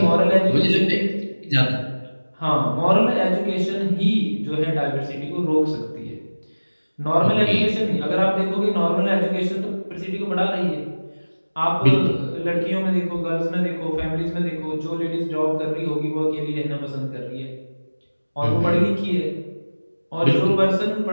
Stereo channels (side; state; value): both; inverted; correlation -1.00